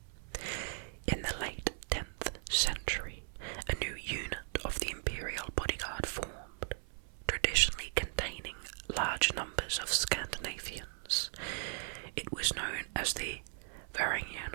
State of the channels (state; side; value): silent; left; 53 dB below the other